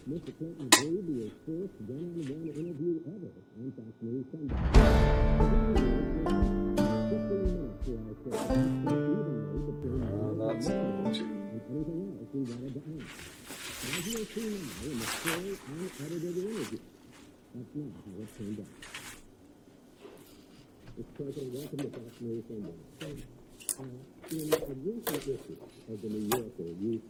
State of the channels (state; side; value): identical; both; correlation 1.00